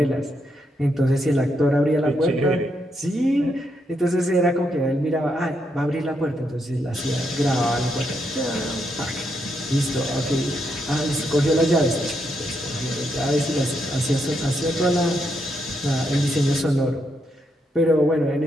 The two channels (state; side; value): normal; both; correlation 0.79